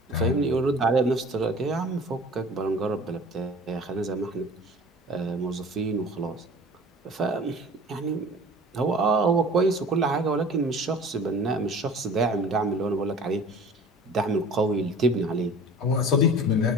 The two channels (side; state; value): both; normal; correlation 0.44